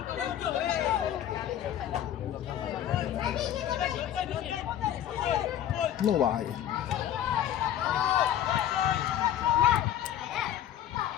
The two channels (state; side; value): quieter; right; 11.0 dB